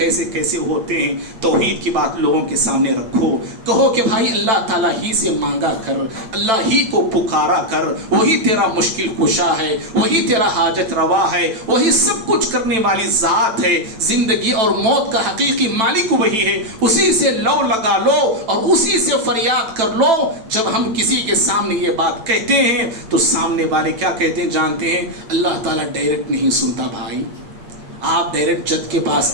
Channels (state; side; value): late; left; 9.1 ms